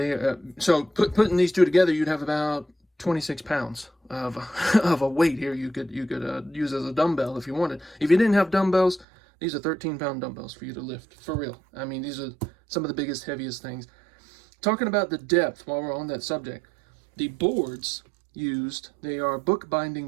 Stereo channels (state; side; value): drops out; left; at 9.1 s